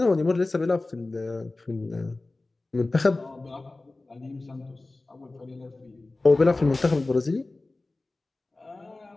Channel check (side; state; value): right; quieter; 3.1 dB